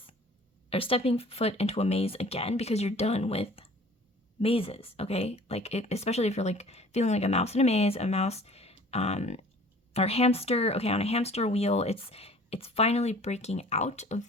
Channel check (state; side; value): normal; both; correlation 0.49